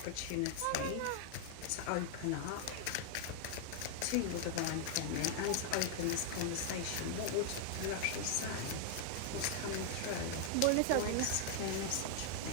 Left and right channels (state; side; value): different; both; correlation 0.00